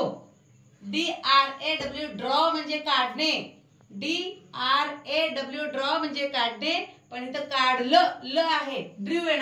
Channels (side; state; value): both; identical; correlation 1.00